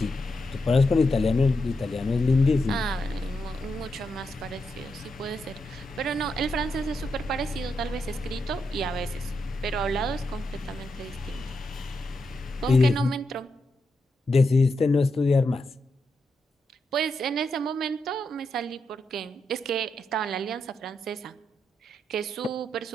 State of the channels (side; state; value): both; normal; correlation 0.84